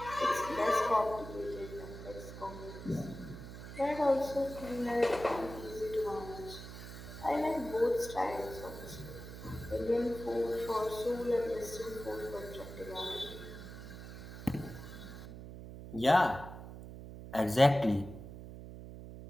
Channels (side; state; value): right; noise; hum, 12 dB below the sound